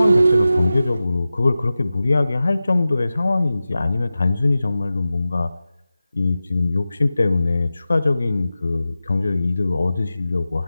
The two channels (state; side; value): inverted; both; correlation -0.94